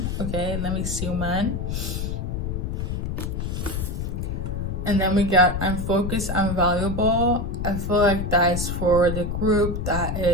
Okay, let me see, man. And then we got I'm focused, I'm valuable. I feel like that's for the group that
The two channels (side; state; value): left; noise; rumble, 3 dB below the sound